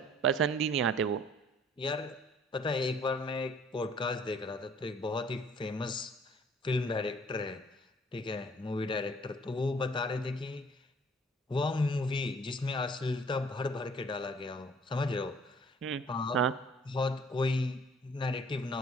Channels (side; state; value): both; normal; correlation 0.56